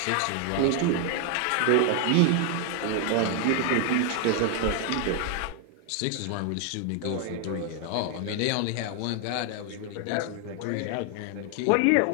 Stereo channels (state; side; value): different; both; correlation 0.00